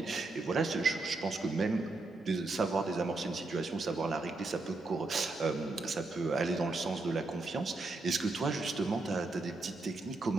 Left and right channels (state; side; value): quieter; left; 3.3 dB